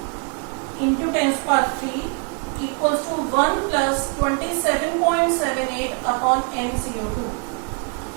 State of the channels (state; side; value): quieter; left; 36.1 dB